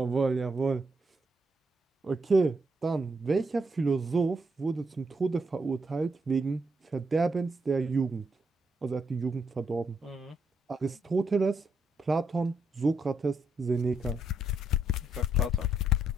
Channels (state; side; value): normal; both; correlation 0.77